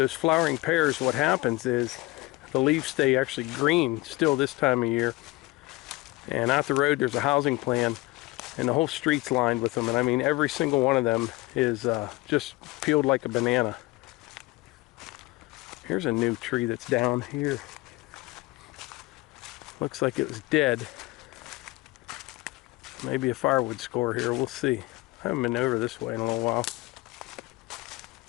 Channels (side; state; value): right; quieter; 21.4 dB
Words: flowering pears, what happens is the leaves stay actually green still this time of year. And out the road there's a housing plan, and the whole street's lined with them. And I mean, every single one of them is just peeled like a banana. Here's a new tree that's down here. Looks like it was dead. Maybe a firewood score here, we'll see. I haven't been over this way in a little while.